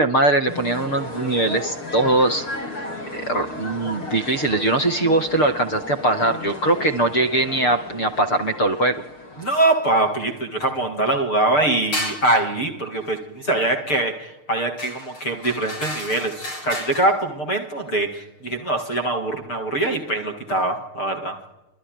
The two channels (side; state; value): right; late; 6.6 ms